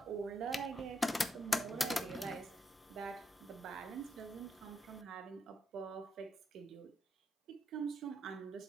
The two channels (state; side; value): normal; both; correlation 0.81